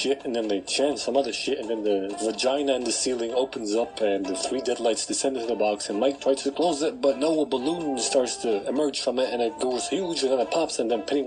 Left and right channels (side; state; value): both; identical; correlation 1.00